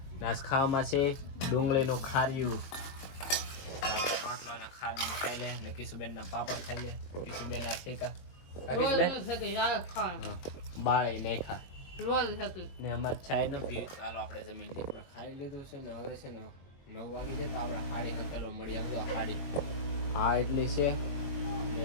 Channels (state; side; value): late; right; 22 ms